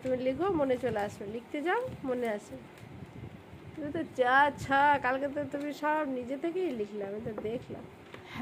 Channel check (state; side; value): identical; both; correlation 1.00